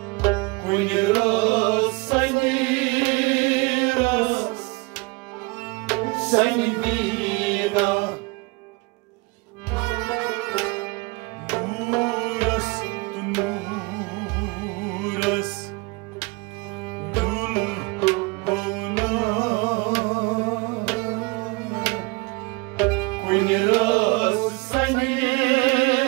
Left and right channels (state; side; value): quieter; left; 26.7 dB